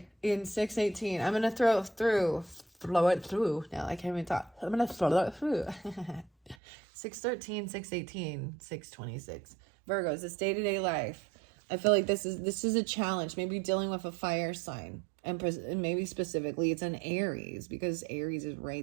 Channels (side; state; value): left; drops out; at 6.6 s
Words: in 618, I'm gonna flow it through. Now I can't even talk. I'm gonna flow it through. 613, 618, 626. Virgos, it's day-to-day life. I feel like this is a challenge. Maybe dealing with a fire sign. And maybe specifically it's an Aries, because Aries is